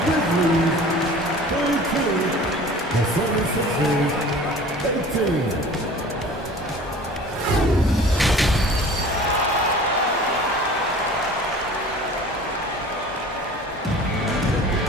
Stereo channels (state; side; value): normal; both; correlation 0.43